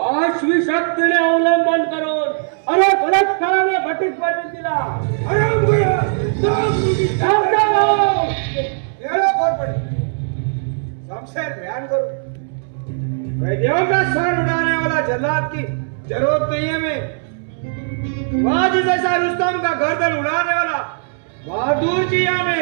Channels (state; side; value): silent; left; digital silence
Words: शक्तीने अवलंबन करून अरे बलात्काराने घटित करून दिला. शमशेर बयान करो, कैदियों का सर उड़ाने वाला जल्लाद की जरूरत नहीं है हमें. बाजी जैसा रुस्तम का गर्दन उड़ाने वाला बहादुर जी